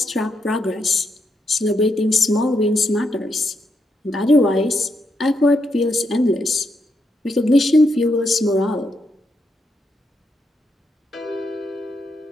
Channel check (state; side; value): normal; both; correlation 0.81